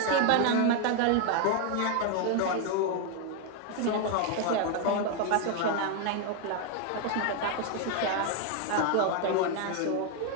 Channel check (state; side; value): different; both; correlation 0.01